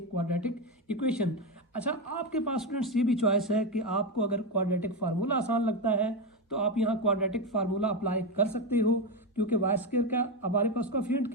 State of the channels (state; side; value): normal; both; correlation 0.11